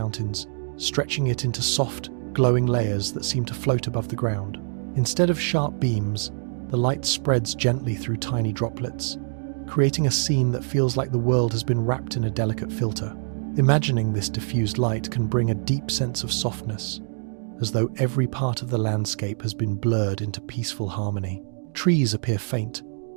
stretching it into soft, glowing layers that seem to float above the ground. Instead of sharp beams, the light spreads gently through tiny droplets, creating a scene that feels like the world has been wrapped in a delicate filter. Imagining this diffused light can bring a deep sense of softness, as though every part of the landscape has been blurred into peaceful harmony. Trees appear faint,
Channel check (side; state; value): left; silent; digital silence